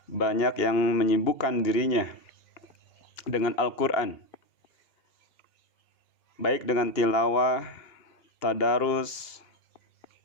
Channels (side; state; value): right; late; 2.7 ms